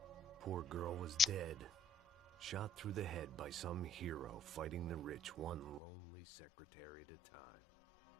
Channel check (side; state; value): right; drops out; at 5.8 s